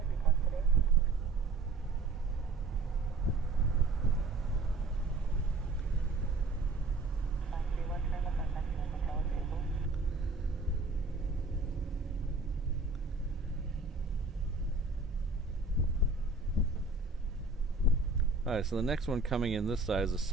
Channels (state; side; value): quieter; left; 3.4 dB